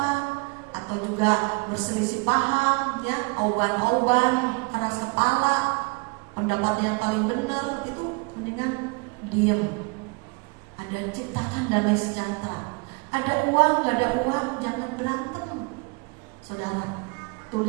atau juga berselisih paham, ya, oban-oban, keras kepala, pendapat yang paling benar itu mendingan diam. Ada ciptakan damai sejahtera. Ada uang, gak ada uang, jangan berantem, saudara.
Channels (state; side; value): quieter; left; 31.0 dB